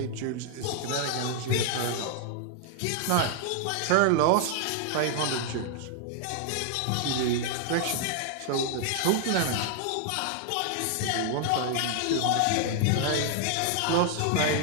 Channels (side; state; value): both; different; correlation 0.00